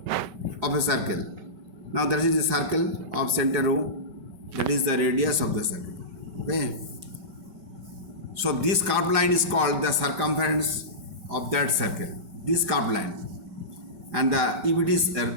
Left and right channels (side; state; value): left; late; 5.2 ms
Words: of a circle? Now that is the circle of center O, that is the radius of the circle. Okay. So this curved line is called the circumference of that circle. This curved line. And if it is